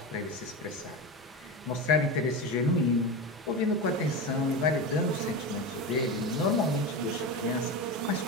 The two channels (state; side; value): normal; both; correlation 0.21